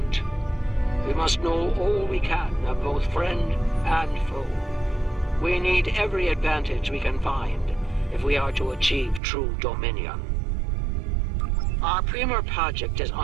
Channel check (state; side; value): drops out; left; at 9.2 s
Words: We must know all we can of both friend and foe. We need every advantage we can find if we are to achieve true dominion. Our premier project is